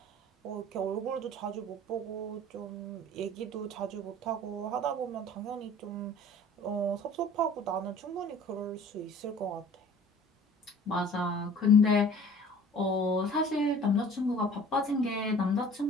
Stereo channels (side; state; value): both; normal; correlation 0.47